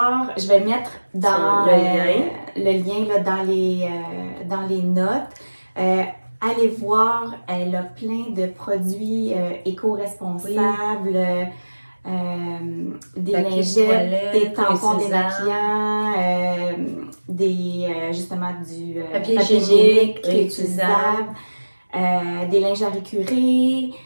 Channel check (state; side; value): inverted; both; correlation -1.00